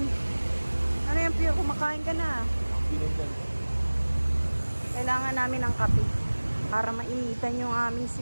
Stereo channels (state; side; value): inverted; both; correlation -1.00